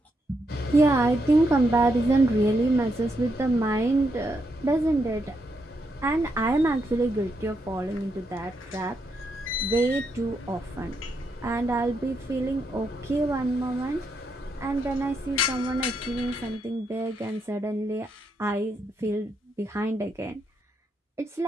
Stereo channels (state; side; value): normal; both; correlation 0.80